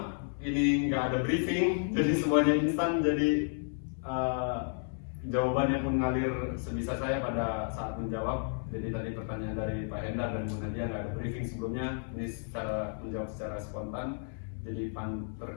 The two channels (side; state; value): right; silent; 56 dB below the other